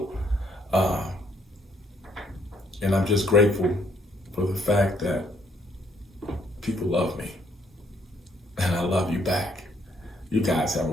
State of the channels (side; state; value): both; normal; correlation 0.69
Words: And I'm just grateful for the fact that people love me, and I love you back. You guys have a